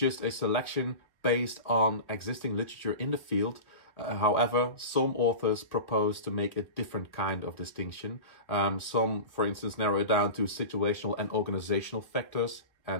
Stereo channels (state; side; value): late; right; 1.4 ms